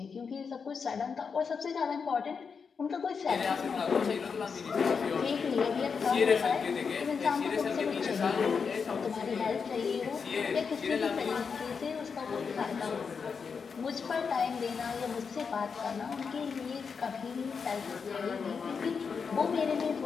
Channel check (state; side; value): quieter; right; 5.7 dB